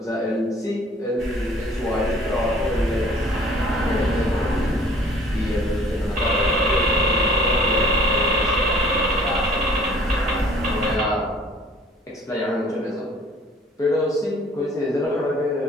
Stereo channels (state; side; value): normal; both; correlation 0.54